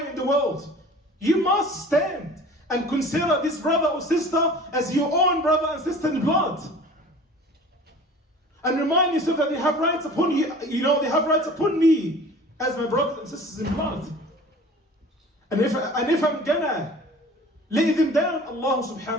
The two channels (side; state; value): both; normal; correlation 0.44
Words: in the world, you must stand and consider this brother or sister as your own brother and sister in blood. And remind yourself that they have rights upon you, they have rights upon me as my brothers and sisters in blood. And if I'm gonna lay them down, Allah